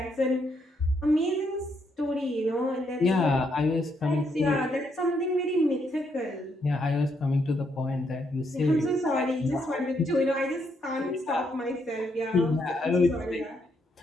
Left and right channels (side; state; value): both; normal; correlation 0.76